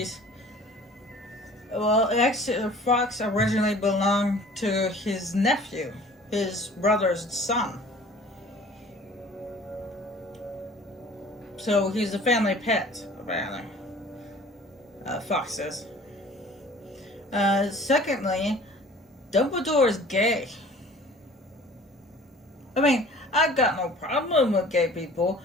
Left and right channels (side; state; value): both; normal; correlation 0.48